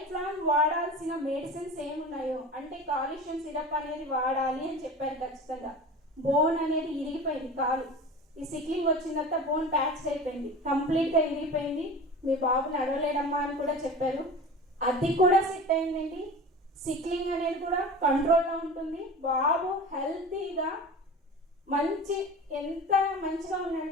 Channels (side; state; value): both; normal; correlation 0.34